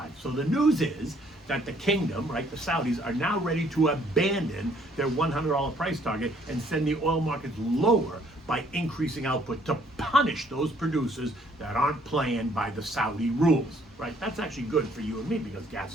So the news is that the kingdom, right, the Saudis, are now ready to abandon their $100 price target and send the oil markets lower by increasing output to punish those producers that aren't playing by the Saudi rules, right? That's actually good for you and me because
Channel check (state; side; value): normal; both; correlation 0.64